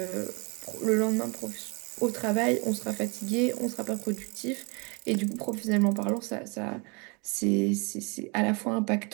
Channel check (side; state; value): left; quieter; 30.2 dB